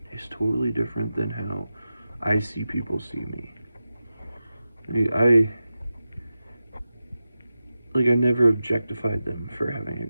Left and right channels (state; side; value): inverted; both; correlation -0.93